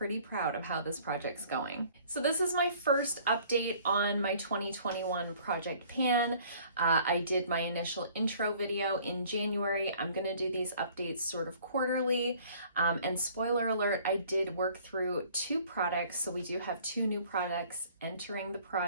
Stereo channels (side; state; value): both; inverted; correlation -0.54